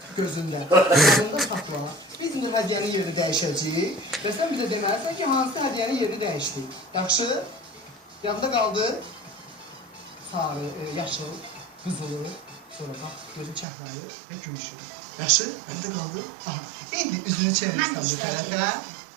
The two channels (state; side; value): drops out; left; at 13.7 s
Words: gözündən, gözündən tapla. Biz indi hədiyyənin yerini dəyişəcəyik və sən bizə deməlisən ki, hansı hədiyyənin yerini dəyişdik. Yaxşı, yadda qaldı sarı, yaşıl, qızılı, sonra bax, gözün çəhrayı və gümüşü. Yaxşı, yadda qaldı. Aha, indi üzünü çevirsən bu tərəfə.